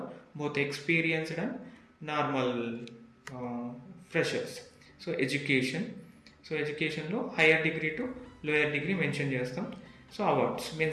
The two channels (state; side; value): identical; both; correlation 1.00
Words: both experienced and normal freshers. So ఎడ్యుకేషన్లో higher degree to lower degree mention చేస్తాం. So awards